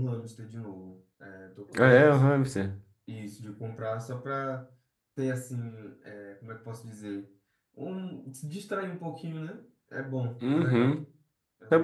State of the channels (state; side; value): identical; both; correlation 1.00